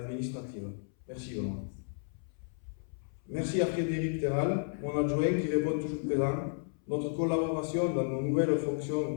Merci Benoît. Merci à Frédéric Terral, mon adjoint qui répond toujours présent. Notre collaboration dans nos nouvelles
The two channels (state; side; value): silent; right; 56 dB below the other